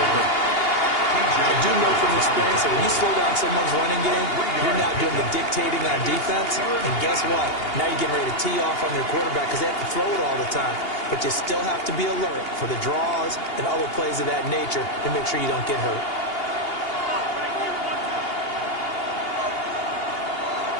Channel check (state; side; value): late; right; 2.8 ms